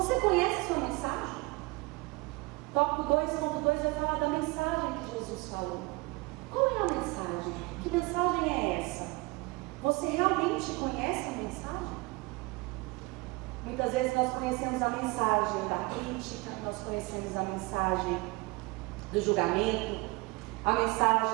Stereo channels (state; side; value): quieter; left; 24.5 dB